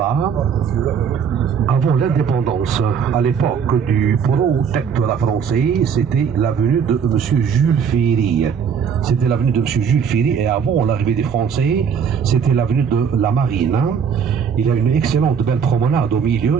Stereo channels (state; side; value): quieter; left; 7.0 dB